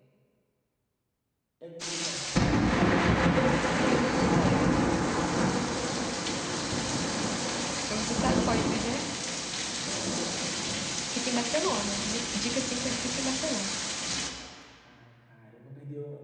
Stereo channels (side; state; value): both; identical; correlation 1.00